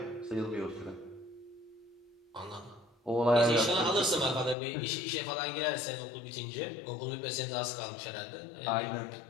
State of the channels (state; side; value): drops out; right; at 4.5 s